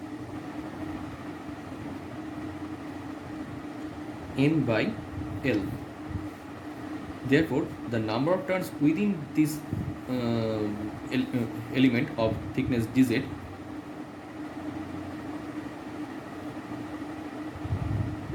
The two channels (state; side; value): identical; both; correlation 1.00